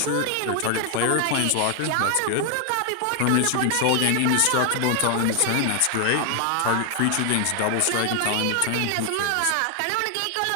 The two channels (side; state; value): both; different; correlation 0.00